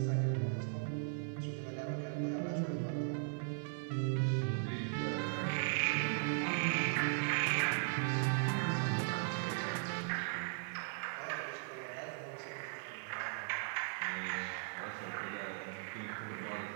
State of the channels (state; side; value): silent; left; 52 dB below the other